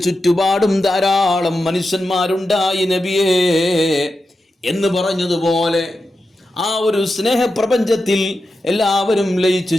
ചുറ്റുപാടും ധാരാളം മനുഷ്യന്മാരുണ്ടായി നബിയേ എന്ന് പറഞ്ഞതുപോലെ ആ ഒരു സ്നേഹപ്രപഞ്ചത്തിൽ എല്ലാവരും ലയിച്ചു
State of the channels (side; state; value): both; normal; correlation 0.90